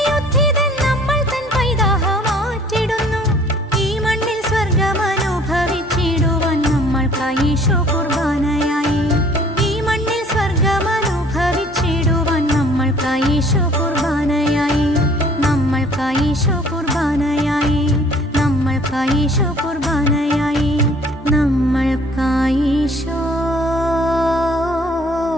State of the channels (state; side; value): normal; both; correlation 0.55